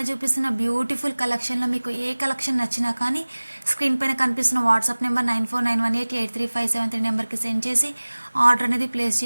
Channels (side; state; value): both; inverted; correlation -1.00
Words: చూపిస్తున్న బ్యూటిఫుల్ కలెక్షన్లో మీకు ఏ కలెక్షన్ నచ్చినా కానీ స్క్రీన్ పైన కనిపిస్తున్న వాట్సాప్ నెంబర్ 9491883573 నెంబర్కి సెండ్ చేసి ఆర్డర్ అనేది ప్లేస్